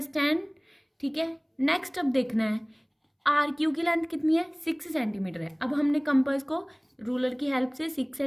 ठीक है। नेक्स्ट अब देखना है आर क्यू की लेंथ कितनी है, 6 सेंटीमीटर है। अब हमने कंपास को रूलर की हेल्प से 6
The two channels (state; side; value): identical; both; correlation 1.00